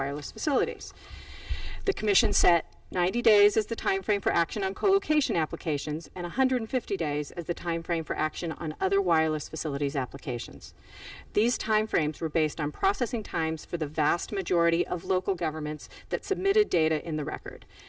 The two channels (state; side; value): identical; both; correlation 1.00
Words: facilities. The Commission set 90 days as the time frame for action on co-location applications, and 150 days as the time frame for action on other wireless facilities applications. These time frames were based on processing times for the vast majority of local governments that submitted data in the record.